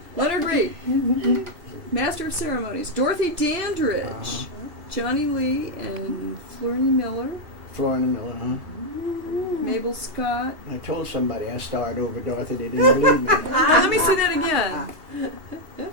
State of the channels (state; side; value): late; left; 2.8 ms